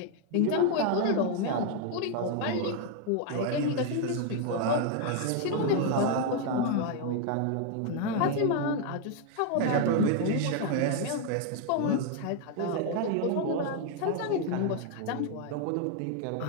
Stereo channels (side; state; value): both; different; correlation 0.01